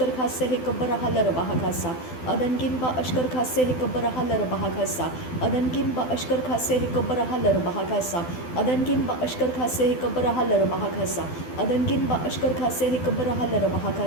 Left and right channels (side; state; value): right; late; 12 ms